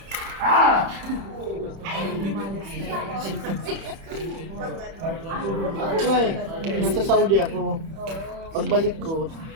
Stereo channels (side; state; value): left; late; 31 ms